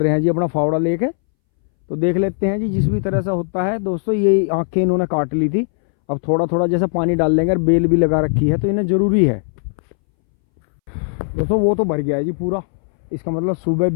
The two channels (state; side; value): silent; right; 65 dB below the other